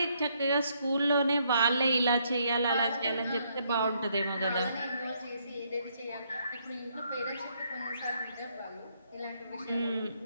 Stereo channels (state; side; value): inverted; both; correlation -0.72